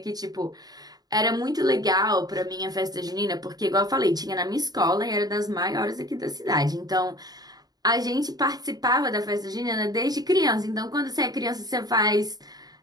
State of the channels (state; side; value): late; left; 0.19 ms